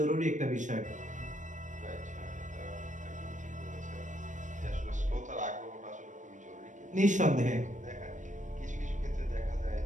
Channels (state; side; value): late; left; 0.36 ms